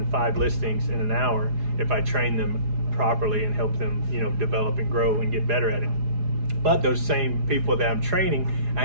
5 listings in an hour if I train them properly and help them, develop and grow and get better at it. But those same people that I'm training, I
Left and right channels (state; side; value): late; left; 4.8 ms